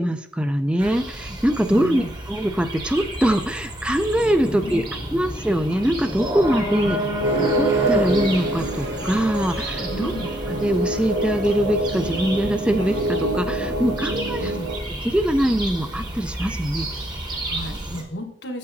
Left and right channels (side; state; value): both; normal; correlation 0.75